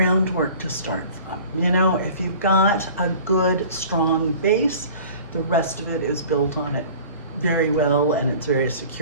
to start from. You know, if you've got a good, strong base, the rest of it is built on it very well and it's very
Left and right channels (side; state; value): both; inverted; correlation -0.44